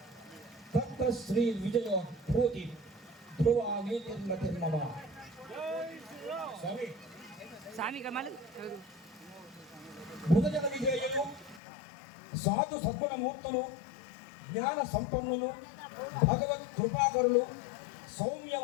తత్ర శ్రీ విజయో భూతి ధ్రువా నీతిర్మతిర్మమ. స్వామి స్వామి కమల్ భుజగ విజయులు, సాధు సద్గుణమూర్తులు, జ్ఞాన సంపన్నులు, భగవత్ కృపాకరులు,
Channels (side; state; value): right; drops out; at 11.6 s